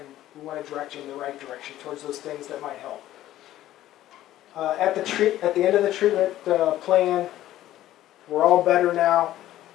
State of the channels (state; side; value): quieter; right; 13.8 dB